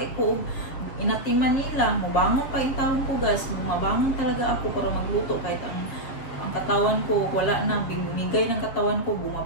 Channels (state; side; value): late; right; 7.6 ms